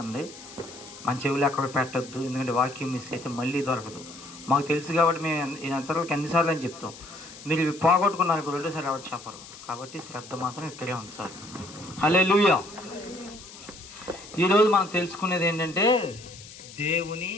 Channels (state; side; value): noise; left; hiss, 17 dB below the sound